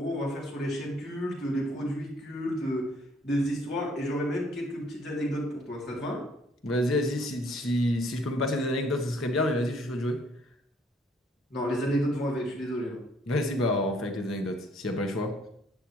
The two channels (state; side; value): normal; both; correlation 0.63